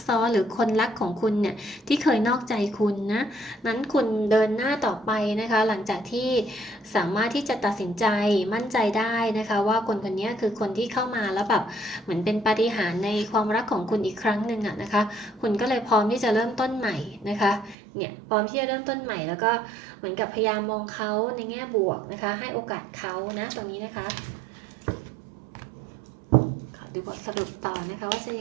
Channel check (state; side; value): drops out; left; at 17.8 s